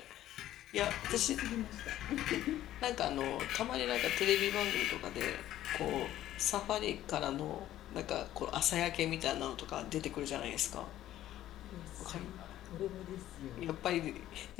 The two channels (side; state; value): right; quieter; 13.3 dB